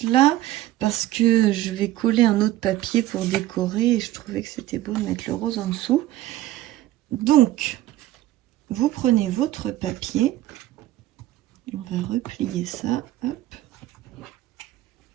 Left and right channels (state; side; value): quieter; left; 15.1 dB